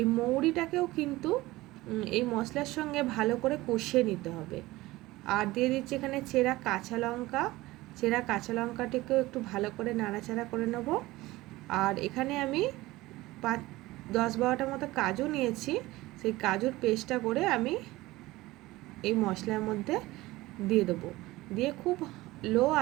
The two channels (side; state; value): left; quieter; 18.9 dB